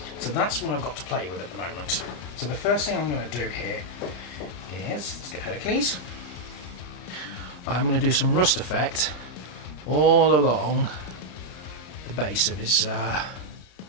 So that's what I've got to play with at the moment. So the first thing I'm going to do here is, let's get Hercules. I'm going to do some rust effect all along the base of his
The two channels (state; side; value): late; right; 33 ms